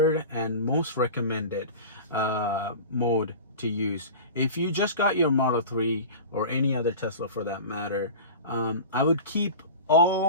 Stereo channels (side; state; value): both; inverted; correlation -0.34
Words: and most recommended mode to use. If you just got your Model 3 or any other Tesla for that matter, I would keep